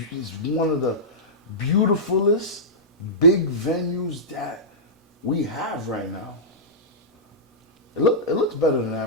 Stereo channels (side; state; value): both; normal; correlation -0.15